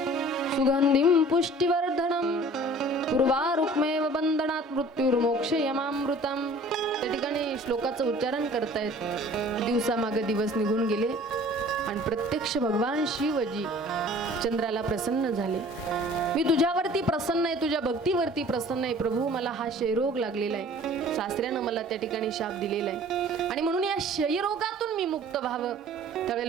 सुगंधिं पुष्टिवर्धनम पूर्वारुक्मेव बंधनात् मृत्युर्मोक्षयमामृतम. त्या ठिकाणी श्लोकाचं उच्चारण करतायत. दिवसामागे दिवस निघून गेले आणि प्रत्यक्ष भगवान शिवजी चंद्राला प्रसन्न झाले. मी तुझ्यावरती प्रसन्न आहे, तुझ्या भक्तीवरती प्रसन्न आहे प्रभू. मला हा क्षयरोग लागलेला आहे, सासऱ्यानं मला त्या ठिकाणी शाप दिलेला आहे आणि म्हणून या क्षयरोगातून मी मुक्त व्हावं.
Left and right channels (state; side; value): normal; both; correlation 0.49